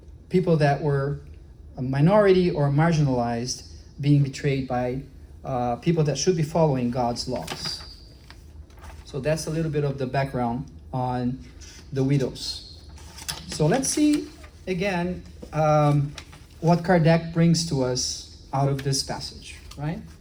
people that were a minority or marginalized, being betrayed by people that should be following God's laws. So that's a little bit of the background on the widows. So let's see again what Kardec brings to us out of this passage, right?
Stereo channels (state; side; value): identical; both; correlation 1.00